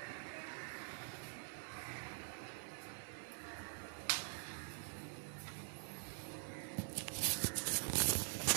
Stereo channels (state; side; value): silent; left; digital silence